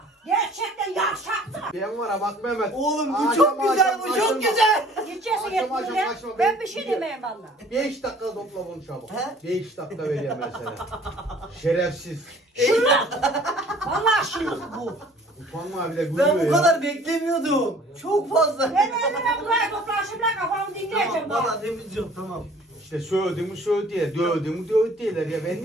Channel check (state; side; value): normal; both; correlation 0.52